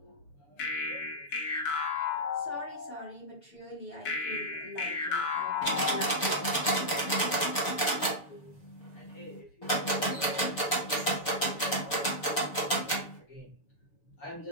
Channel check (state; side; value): late; right; 6.9 ms